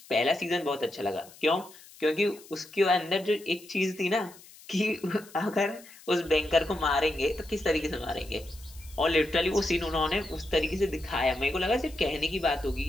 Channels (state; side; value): noise; left; hiss, 21 dB below the sound